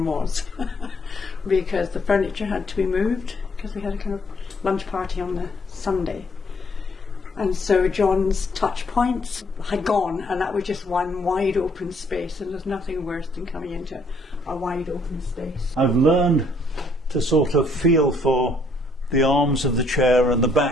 was because the furniture had to be moved because we had a kind of lunch party on the Sunday. And so John's touch points had gone, and that was just one wide open space, and there's nothing worse than coming into a wide open space. I've learned to sort of feel for the arms of the chair and the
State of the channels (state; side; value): normal; both; correlation 0.66